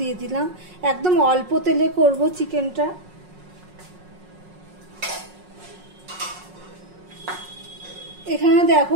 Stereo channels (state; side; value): late; left; 5.5 ms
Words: দিলাম। একদম অল্প তেলে করব চিকেনটা। এখানে দেখো